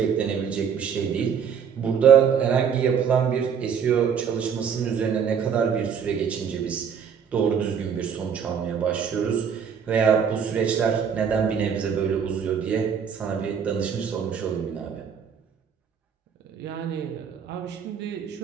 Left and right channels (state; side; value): quieter; left; 7.3 dB